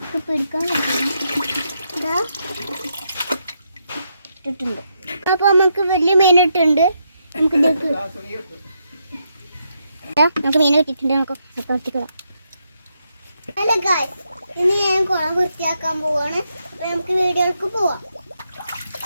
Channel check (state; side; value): inverted; both; correlation -0.80